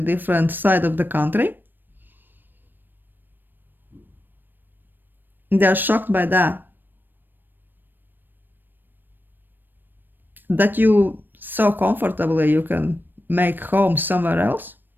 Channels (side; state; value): left; late; 0.093 ms